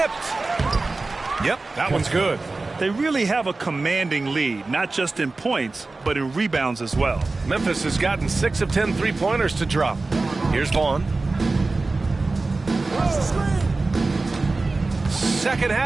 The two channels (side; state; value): left; quieter; 3.5 dB